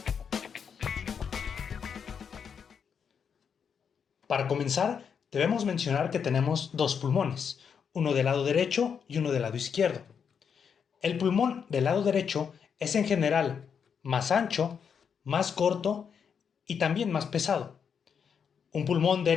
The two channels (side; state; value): right; quieter; 7.0 dB